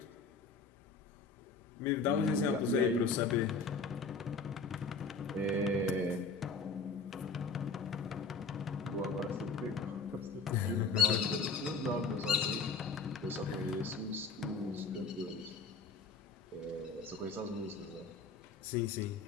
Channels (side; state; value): right; quieter; 4.3 dB